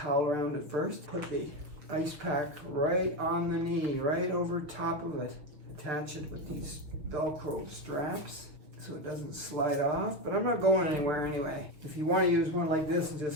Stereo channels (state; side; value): late; left; 6.4 ms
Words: around it first. Put the ice pack right on the knee, right over top of it. Attach it with these Velcro straps so it doesn't slide off, but I'm not going anywhere anyway. If you want to use one like this and